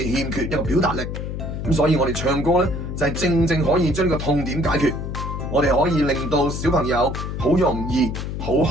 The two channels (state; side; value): noise; left; hum, 5 dB below the sound